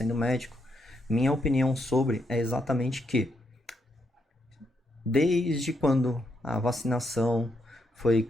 médico, minha opinião sobre é exatamente que desde quando a vacinação foi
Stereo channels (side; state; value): both; normal; correlation 0.79